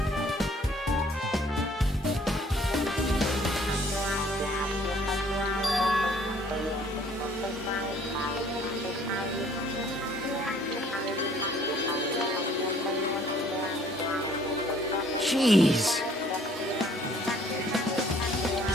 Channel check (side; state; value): both; normal; correlation 0.59